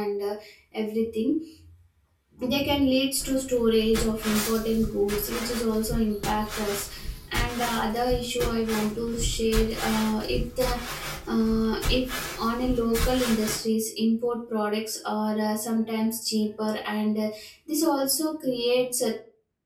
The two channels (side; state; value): both; identical; correlation 1.00